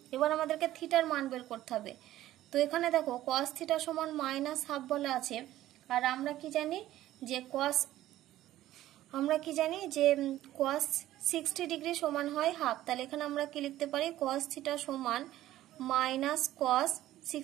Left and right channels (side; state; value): left; quieter; 14.3 dB